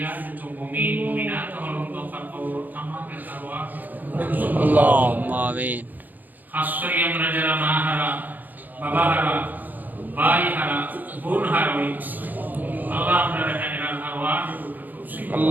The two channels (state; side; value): late; left; 0.084 ms